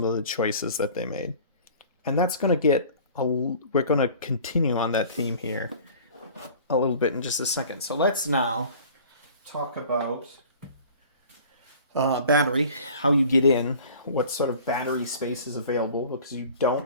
of the choices that they made. And that's going to get... we're going to continue on that theme here a little bit in just a second. So let's now talk about battery, how you get in, what sort of battery space is available, because you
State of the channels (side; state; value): both; inverted; correlation -0.46